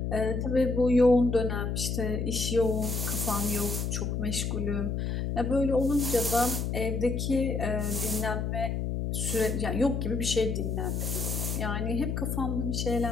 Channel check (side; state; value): left; noise; hum, 1 dB below the sound